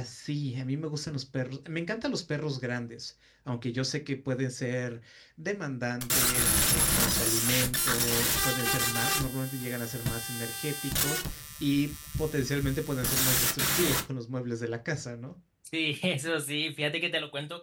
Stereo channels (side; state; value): both; identical; correlation 1.00